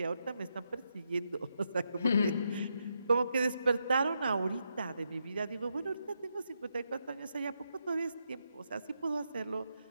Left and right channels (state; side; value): inverted; both; correlation -0.82